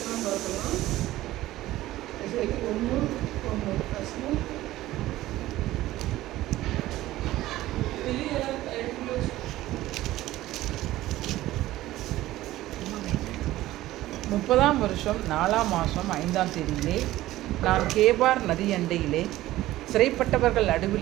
பார்க்கலாம். இசைக்கு ஒன்று கஷ்டம். முப்பதாம் வருஷம் 4ஆம் மாதம் 5ஆம் தேதியிலே நான் கேபார் நதியண்டையிலே சிறைப்பட்டவர்கள்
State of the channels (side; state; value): left; quieter; 15.8 dB